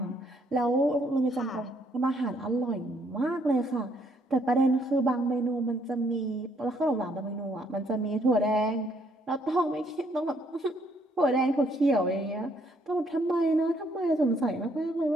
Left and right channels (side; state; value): both; normal; correlation 0.68